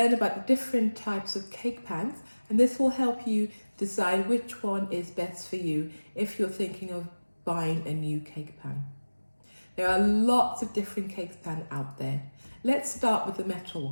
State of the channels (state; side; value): inverted; both; correlation -1.00